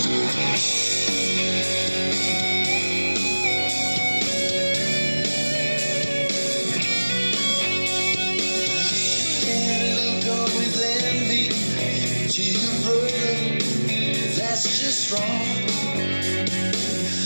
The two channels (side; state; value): both; inverted; correlation -1.00